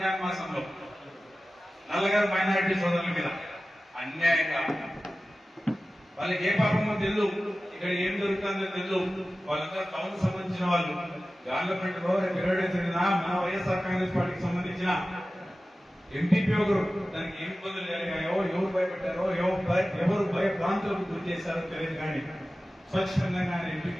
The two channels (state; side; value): normal; both; correlation 0.96